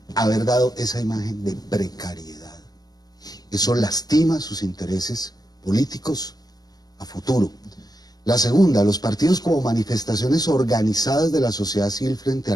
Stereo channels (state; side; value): late; right; 0.19 ms